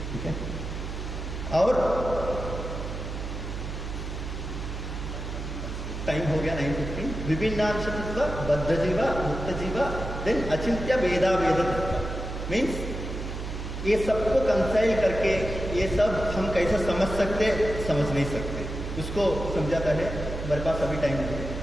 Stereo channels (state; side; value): noise; right; hum, 6 dB below the sound